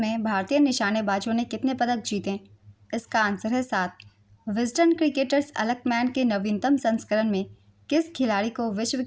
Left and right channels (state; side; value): identical; both; correlation 1.00